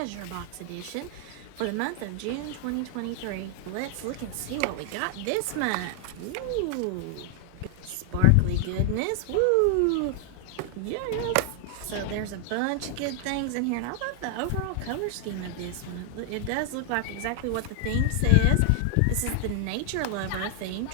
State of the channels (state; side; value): different; both; correlation 0.00